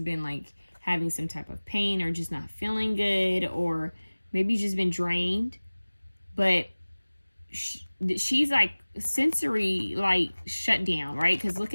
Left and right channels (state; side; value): inverted; both; correlation -1.00